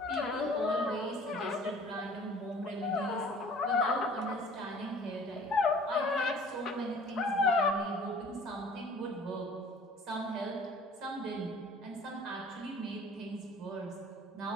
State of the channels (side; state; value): both; normal; correlation 0.49